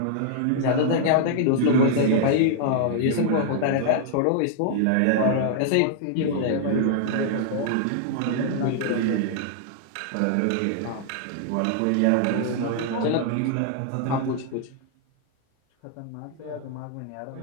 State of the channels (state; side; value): different; both; correlation -0.01